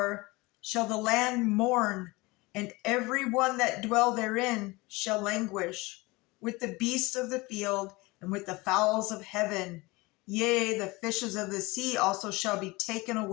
shall the land mourn, and every one that dwell therein shall languish, with the beasts of the field and with the fowls of heaven. Yea, the fishes of the sea also shall be taken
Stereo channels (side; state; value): right; quieter; 23.1 dB